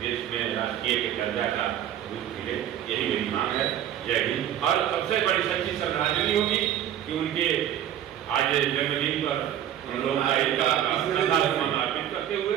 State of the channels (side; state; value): left; quieter; 10.8 dB